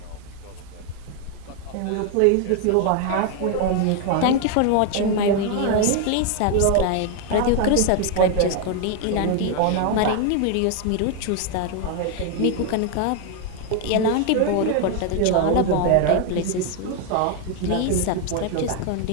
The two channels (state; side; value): different; both; correlation 0.01